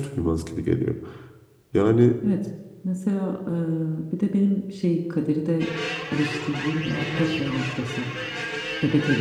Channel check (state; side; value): identical; both; correlation 1.00